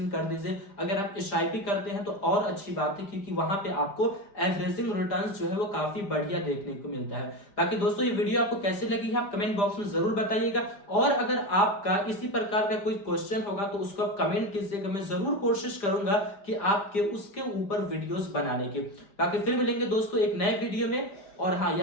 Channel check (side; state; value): right; late; 4.9 ms